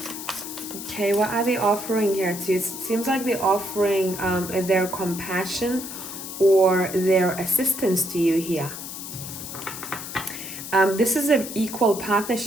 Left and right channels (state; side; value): noise; left; hiss, 9 dB below the sound